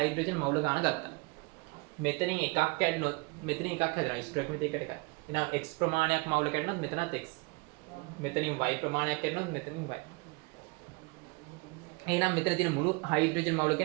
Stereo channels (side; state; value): left; quieter; 27.6 dB